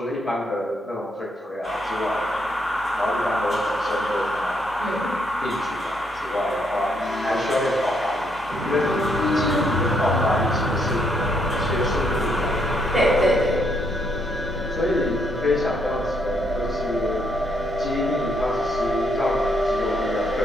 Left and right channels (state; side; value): normal; both; correlation 0.74